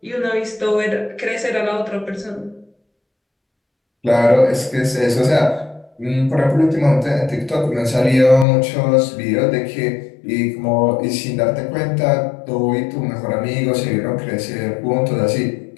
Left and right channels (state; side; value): drops out; right; at 8.5 s